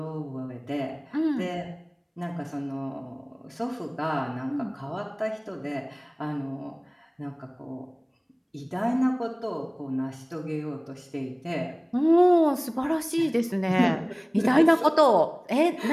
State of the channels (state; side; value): identical; both; correlation 1.00